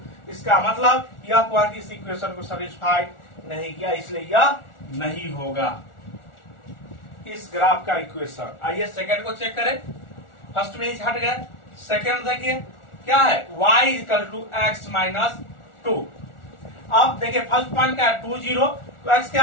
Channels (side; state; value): right; late; 1.4 ms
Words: इसका मतलब यह पॉइंट इस इक्वेशन को सेटिस्फाइड नहीं किया, इसलिए यह नहीं होगा इस ग्राफ का इक्वेशन। आइए सेकंड को चेक करें। फर्स्ट में ही हट गए, सेकंड देखिए क्या है, y equal to X minus 2। अब देखिए फर्स्ट पॉइंट क्या है 2 0, तो x क्या